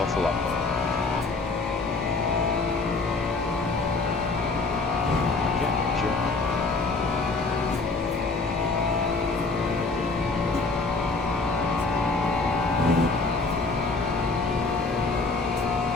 a lot more. Yeah, sure.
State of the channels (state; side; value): quieter; right; 3.7 dB